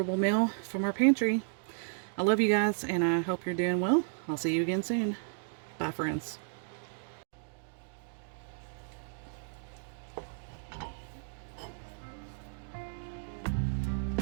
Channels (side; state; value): left; silent; digital silence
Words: meal from our pantry. I love you guys, and I hope you're doing well. I'll see you again soon. Bye, friends.